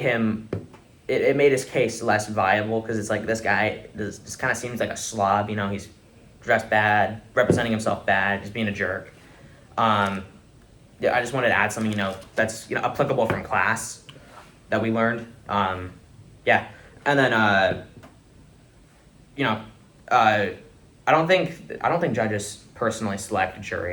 his case less viable because it's like this guy just kind of seems like a slob. You know, he's dressed bad, representing himself bad, just being a jerk. Yeah, I just wanted to add something, you know, that's, you know, applicable from class that we learned. Yeah, and then you know, I don't think judges personally select a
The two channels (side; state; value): both; identical; correlation 1.00